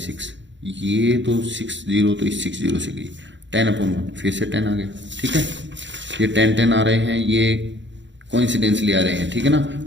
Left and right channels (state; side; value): late; left; 0.53 ms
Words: ये तो 60 तो इस 60 से गई, 10/1 फिर से 10 आ गया, ठीक है। ये 10 10 आ रहे हैं, ये कोइंसिडेंसली आ रहे हैं, ठीक है ना।